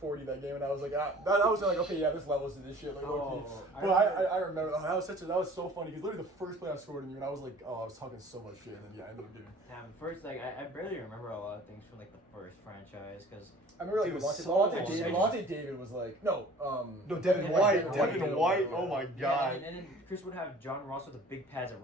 that game, and I was like, that was like, okay, yeah, this levels to this shit, like low-key. Oh, But I remember that was so funny because literally the first play I scored on you, and I was like, oh, I was talking so much shit, and then yeah, I ended up getting. Damn, first, like, I barely remember a lot of things from, like, the first franchise, because... I remember like Dude, Levante so David was like no Devin Yeah, White, Devin Devin White. White. Oh my Yeah, god. and then Chris would have John Ross with the big pads at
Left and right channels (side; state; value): both; normal; correlation 0.48